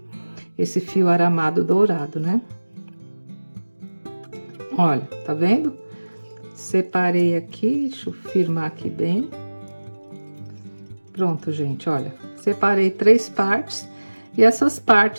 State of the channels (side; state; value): both; inverted; correlation -1.00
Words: esse fio aramado dourado, né? Olha, tá vendo? Separei aqui, deixa eu firmar aqui bem. Pronto, gente, olha. Separei 3 partes, e essas